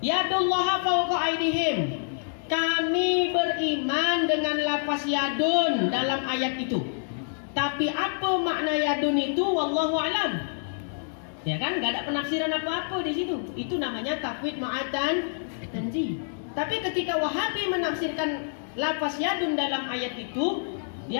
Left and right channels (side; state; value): right; silent; digital silence